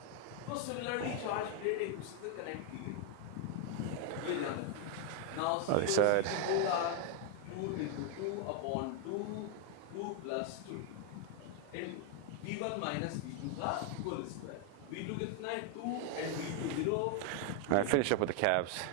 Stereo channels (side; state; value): both; different; correlation 0.00